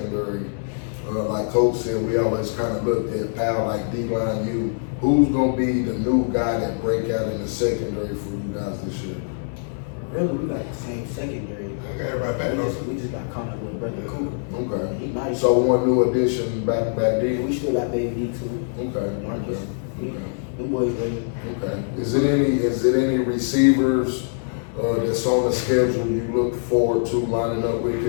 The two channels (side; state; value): right; silent; digital silence